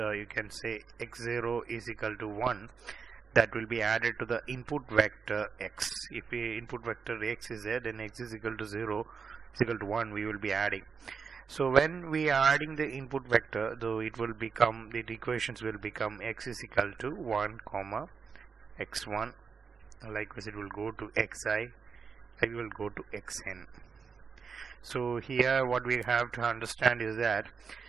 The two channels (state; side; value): quieter; left; 5.7 dB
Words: can say x0 is equal to 1. That will be added to the input vector x. If the input vector x is there, then x is equal to 0 is equal to 1. We will be adding. So when we are adding the input vector, though it will become, the equations will become x is equal to 1 comma x1. Likewise, it will go to xi. It will go to xn. So here, what we have to understand is that